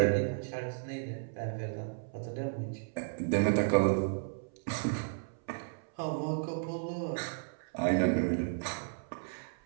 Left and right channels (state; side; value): silent; left; 55 dB below the other